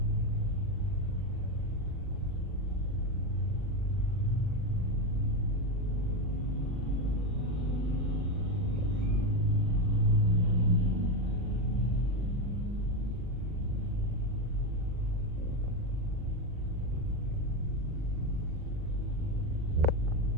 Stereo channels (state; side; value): late; left; 40 ms